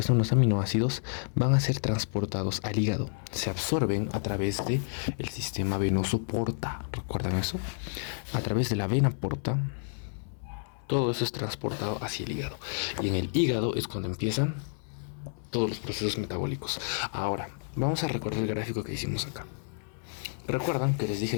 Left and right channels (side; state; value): right; silent; 58 dB below the other